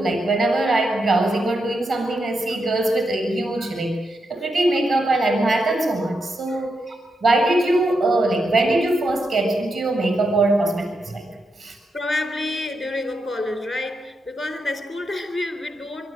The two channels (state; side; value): normal; both; correlation 0.84